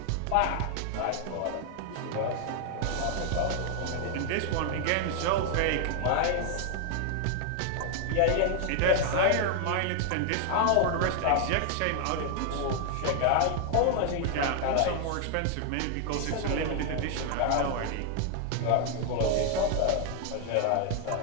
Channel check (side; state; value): both; different; correlation 0.00